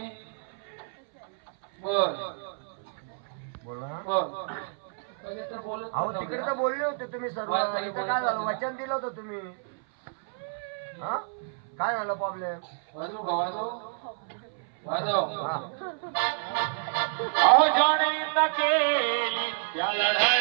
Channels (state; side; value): silent; left; 59 dB below the other